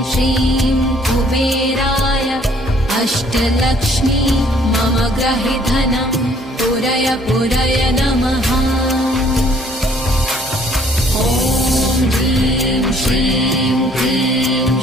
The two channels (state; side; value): normal; both; correlation 0.61